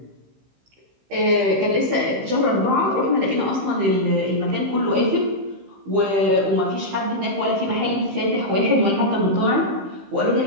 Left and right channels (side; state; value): left; late; 15 ms